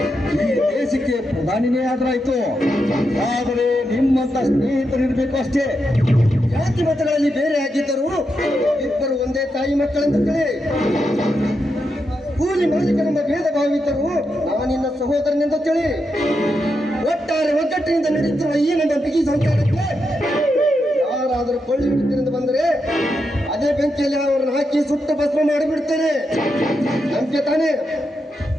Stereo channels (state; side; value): normal; both; correlation 0.85